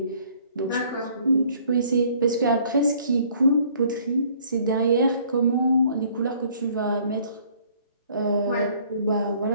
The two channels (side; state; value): both; inverted; correlation -0.59